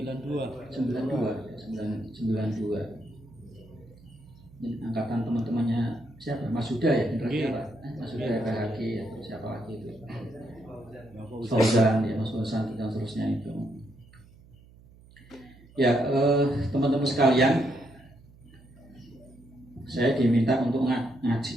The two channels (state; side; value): noise; right; hum, 24 dB below the sound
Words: ini angkatan teman-temannya siapa, Mas Huda ya, generasi apa, Mas Huda ya, PHG atau siapa lagi itu, Fauzan ya, Mas Fauzan dan seterusnya itu ya. Teman-teman sekalian, saya diminta untuk